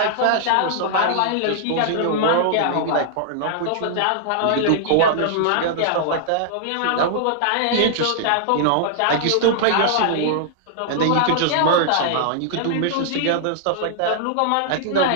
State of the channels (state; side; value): different; both; correlation -0.01